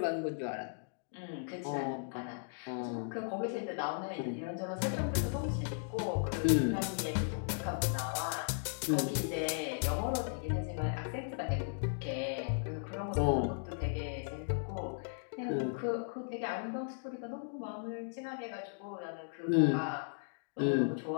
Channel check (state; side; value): silent; right; digital silence